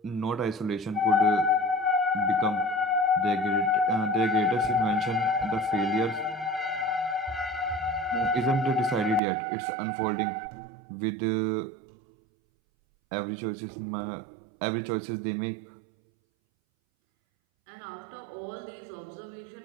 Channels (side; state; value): left; drops out; at 9.2 s